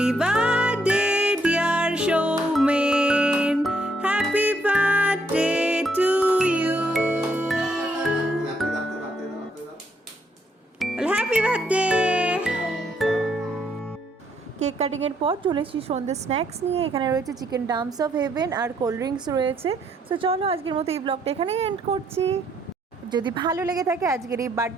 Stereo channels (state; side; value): normal; both; correlation 0.71